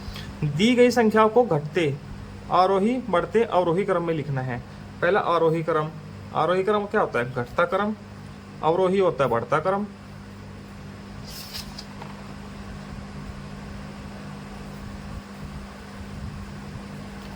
दी गई संख्याओं को घटते, आरोही, बढ़ते, अवरोही क्रम में लिखना है। पहला आरोही क्रम। आरोही क्रम क्या होता है? घटता क्रम। अवरोही होता है बढ़ता क्रम।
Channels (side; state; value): both; identical; correlation 1.00